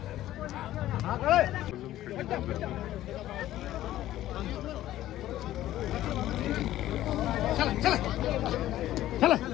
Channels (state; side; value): quieter; right; 14.0 dB